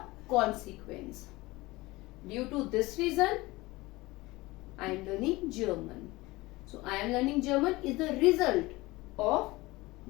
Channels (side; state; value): right; quieter; 20.9 dB